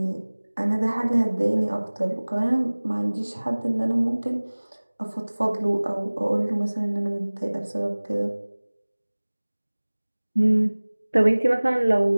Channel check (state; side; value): inverted; both; correlation -1.00